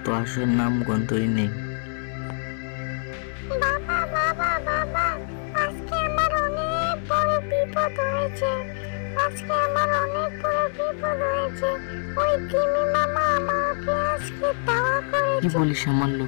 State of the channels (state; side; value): silent; right; digital silence